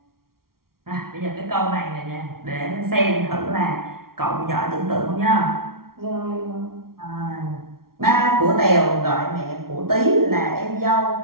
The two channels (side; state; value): left; late; 0.93 ms